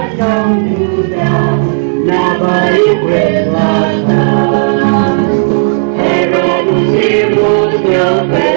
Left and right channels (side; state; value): left; silent; 74 dB below the other